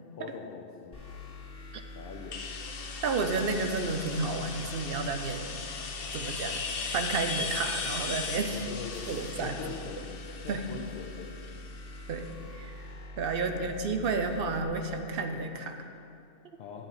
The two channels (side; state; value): left; late; 2.6 ms